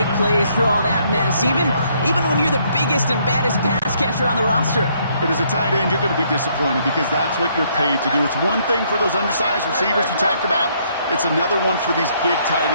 plays through all that mess, even when you're the biggest and baddest pass catcher on the roster. But as a tight end, you're going to be disappointed because that's what you're paid to do. It's one thing for those undersized receivers you talked about. It's another one for these big tight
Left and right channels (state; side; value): inverted; both; correlation -0.69